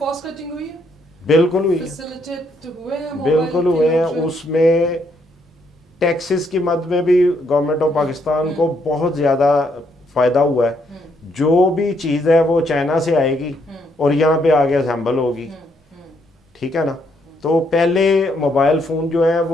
कटिंग हुई है, बिल्कुल हुई है, फैसिलिटेट हुए हैं मोबाइल बिल्कुल के हुए हैं। लोग जो हैं? उसमें टैक्सेस की मद में भी गवर्नमेंट ऑफ पाकिस्तान को बहुत ज़्यादा फ़ायदा हुआ है। जो भी चीज़ है वो चाइना से आएगी और यहाँ पे आगे असेंबल होगी, ठीक है ना। तो पहले मोबाइल फ़ोन जो है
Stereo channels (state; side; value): normal; both; correlation 0.73